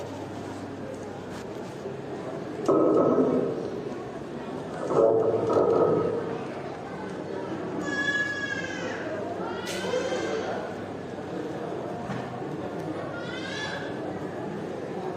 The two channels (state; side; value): identical; both; correlation 1.00